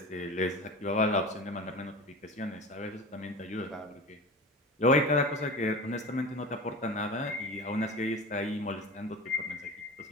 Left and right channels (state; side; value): normal; both; correlation 0.32